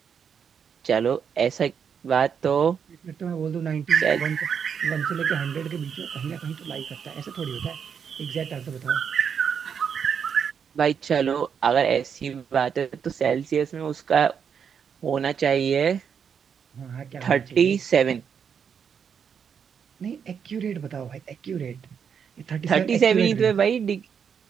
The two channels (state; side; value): quieter; left; 7.2 dB